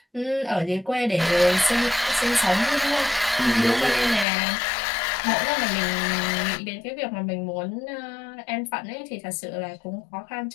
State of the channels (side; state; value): right; drops out; at 4.2 s